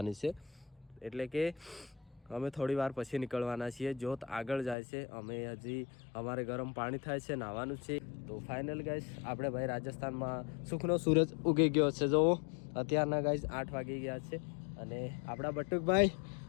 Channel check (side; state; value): right; drops out; at 4.8 s